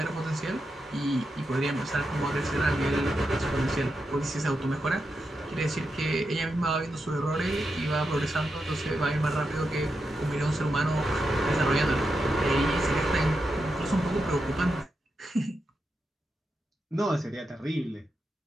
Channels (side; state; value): both; normal; correlation 0.86